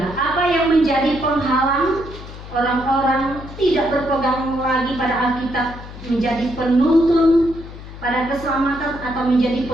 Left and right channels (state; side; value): noise; left; hum, 14 dB below the sound